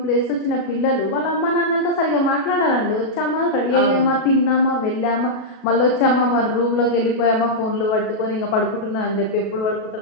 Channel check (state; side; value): late; right; 37 ms